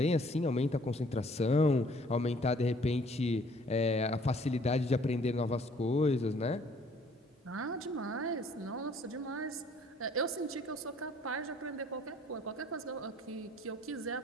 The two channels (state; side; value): normal; both; correlation 0.58